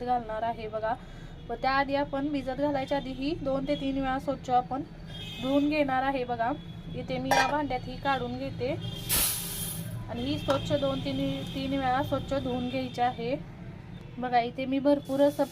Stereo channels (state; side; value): identical; both; correlation 1.00